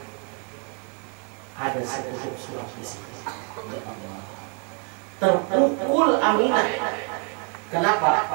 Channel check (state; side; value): quieter; left; 38.2 dB